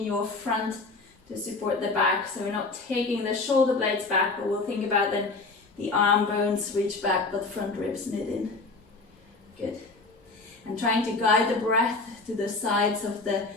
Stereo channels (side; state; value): right; quieter; 3.6 dB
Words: your front to support the back. So we're not taking the shoulder blades back, but we'll think about then the arm bones reach back, but front ribs knit in. Good. And trying to guide the breath to the sides of the